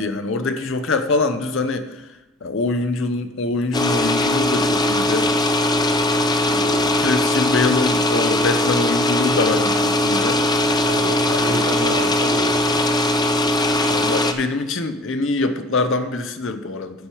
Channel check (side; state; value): both; normal; correlation 0.47